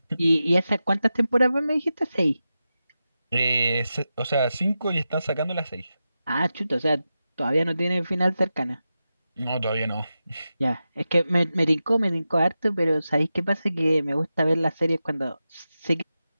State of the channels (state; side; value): inverted; both; correlation -0.92